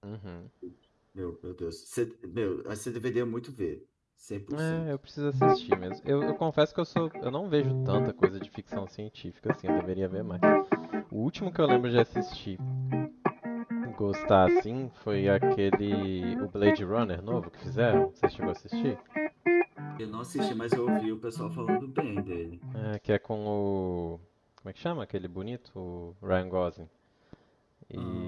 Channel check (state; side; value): identical; both; correlation 1.00